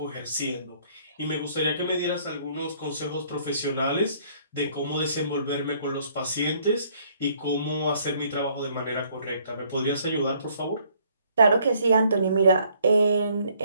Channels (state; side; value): inverted; both; correlation -0.64